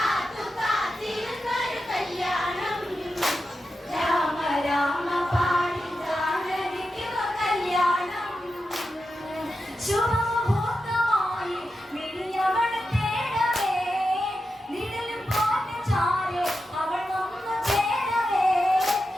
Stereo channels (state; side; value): normal; both; correlation 0.89